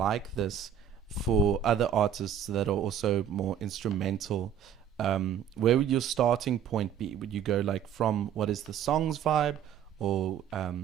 this for other artists that are also more instrumental. Where would your starting point be? Would you go like from what is the song's vibe, or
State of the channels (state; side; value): quieter; left; 8.8 dB